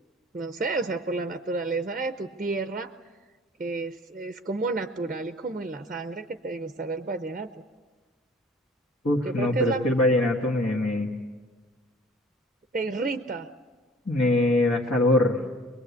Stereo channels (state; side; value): normal; both; correlation 0.49